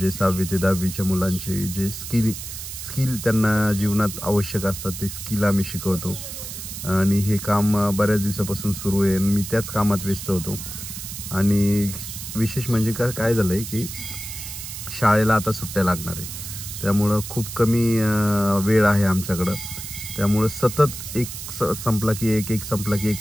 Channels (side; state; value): right; noise; hiss, 9 dB below the sound